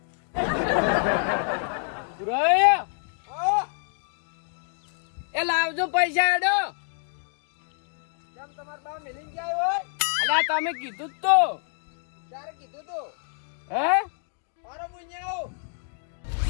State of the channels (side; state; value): right; silent; 56 dB below the other